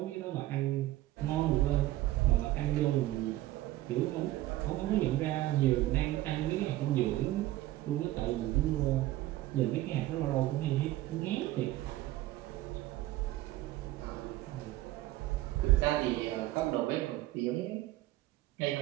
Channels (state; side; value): quieter; left; 16.1 dB